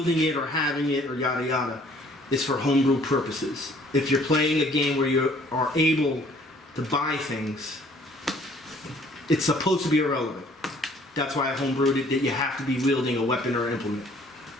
it or having it or yada yada. It's for homebrew purposes. If you're playing a game where you are able to buy things, it's supposed to be irrelevant. That's why I homebrewed it, that you have to be wielding a weapon or implement.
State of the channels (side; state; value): both; normal; correlation 0.58